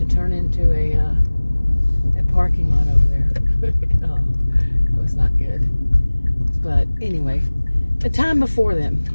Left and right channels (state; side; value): inverted; both; correlation -1.00